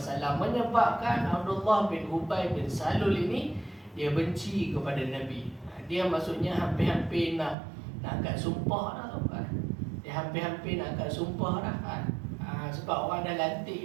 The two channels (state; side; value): drops out; left; at 7.6 s